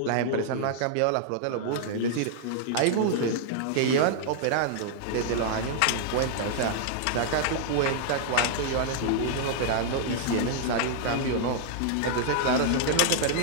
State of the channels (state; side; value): different; both; correlation -0.01